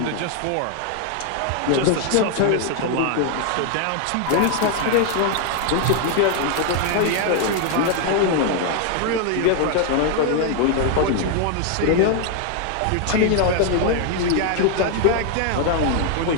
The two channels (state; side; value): different; both; correlation 0.00